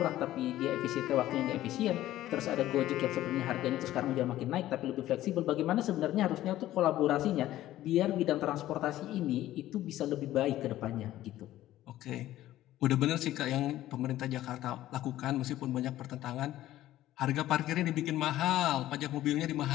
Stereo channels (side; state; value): right; quieter; 14.3 dB